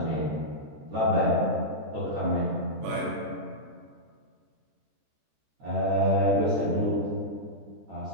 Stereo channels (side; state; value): left; late; 14 ms